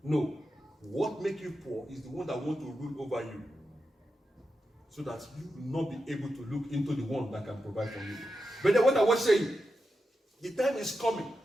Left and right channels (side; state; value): both; normal; correlation 0.89